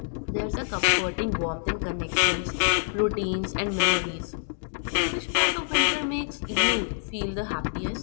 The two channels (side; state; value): right; silent; digital silence